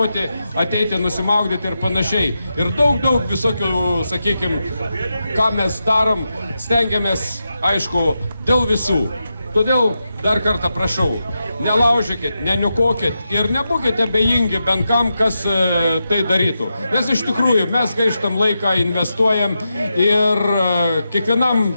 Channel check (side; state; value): both; inverted; correlation -0.88